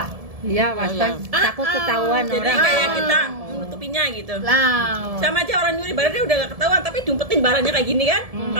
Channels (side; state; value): left; late; 1.7 ms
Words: iya iya. takut ketahuan Jadi orang kayak kita menutupinya gitu. Lah, Sama aja orang nyuri barangnya udah gak ketahuan, tapi diumpetin barangnya kayak gini kan?